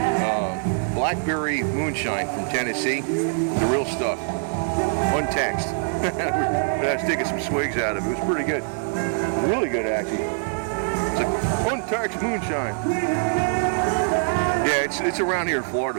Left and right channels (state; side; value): silent; left; 63 dB below the other